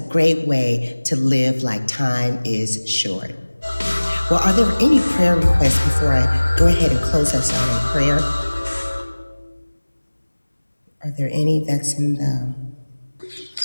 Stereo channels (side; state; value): both; inverted; correlation -1.00